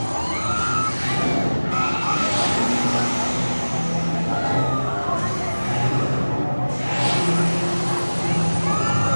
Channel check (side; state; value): both; inverted; correlation -1.00